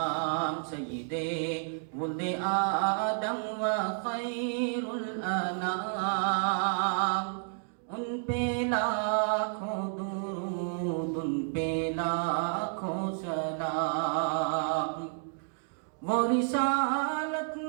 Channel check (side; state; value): left; silent; digital silence